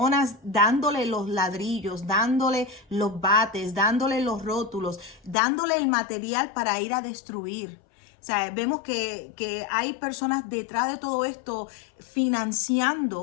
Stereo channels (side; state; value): right; drops out; at 5.4 s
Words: dándole los ladrillos, dándole los bates, dándole los rótulos, dándole el material para ir a destruir. O sea, vemos que hay personas detrás de todo esto